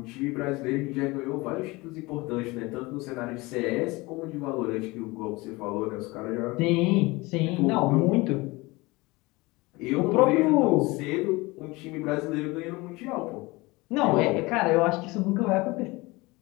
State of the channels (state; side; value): quieter; right; 22.9 dB